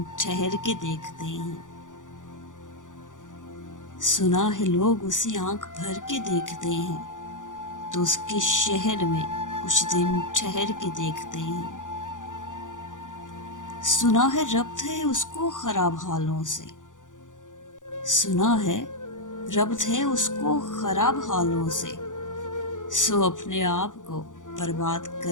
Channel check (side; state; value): right; late; 0.87 ms